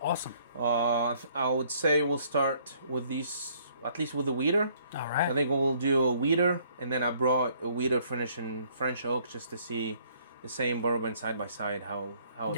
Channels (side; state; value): both; inverted; correlation -0.63